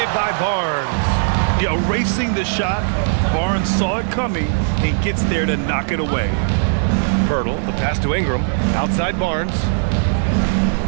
by Barnes. Yeah, erasing the shot. Barnes saw it coming and gets there to knock it away. Pirtle, the pass to Ingram. Outside Barnes.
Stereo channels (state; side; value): silent; left; 56 dB below the other